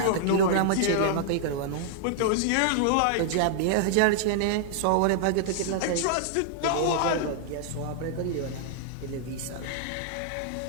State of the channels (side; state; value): both; different; correlation -0.01